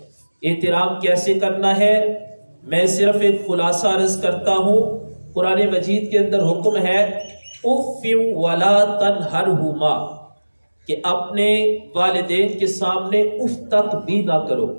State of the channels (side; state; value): both; inverted; correlation -1.00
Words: احترام کیسے کرنا ہے؟ میں صرف ایک خلاصہ عرض کرتا ہوں۔ قرآن مجید کے اندر حکم ہے اف ولا تنہرہما، کہ اپنے والدین کے سامنے اف تک بھی نہ کرو۔